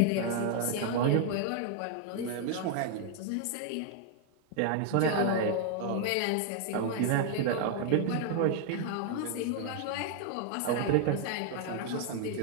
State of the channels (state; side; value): different; both; correlation 0.00